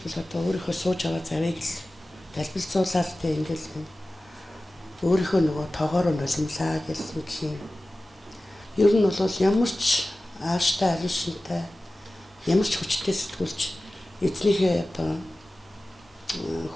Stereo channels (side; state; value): both; normal; correlation 0.96